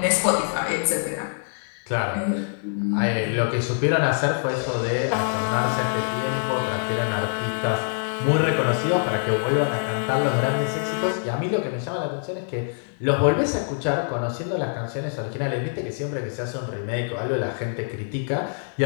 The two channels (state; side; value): silent; right; digital silence